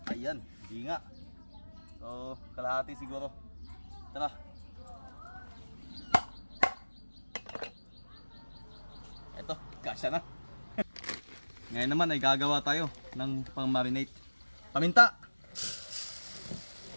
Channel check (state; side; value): inverted; both; correlation -1.00